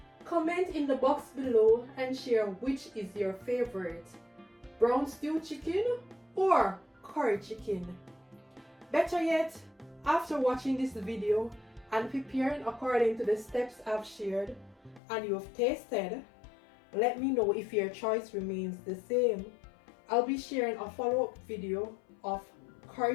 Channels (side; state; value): right; drops out; at 15.0 s